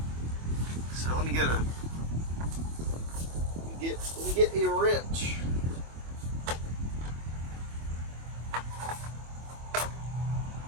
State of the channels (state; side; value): late; left; 25 ms